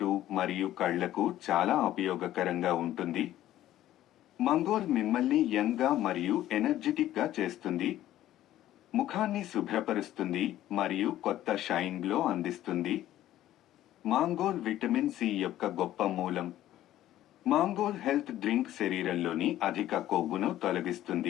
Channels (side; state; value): right; quieter; 13.5 dB